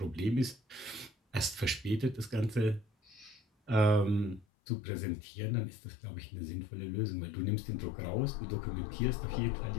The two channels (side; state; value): right; drops out; at 4.5 s